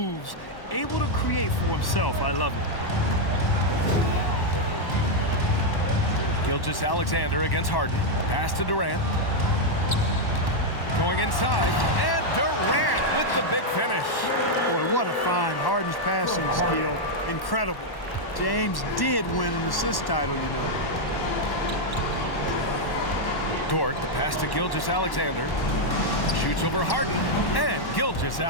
Able to create for himself. I love it. Gilgeous-Alexander against Harden. Pass to Durant. Going inside. And Durant with the big finish. Boy, what a find. Harden's passing skill. Incredible. James did win an assist title, you know. Dort, the pass to Gilgeous-Alexander. Shoots over Harden. And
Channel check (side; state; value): right; late; 1.1 ms